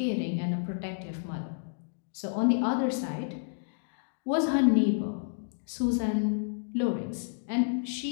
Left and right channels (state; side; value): silent; right; digital silence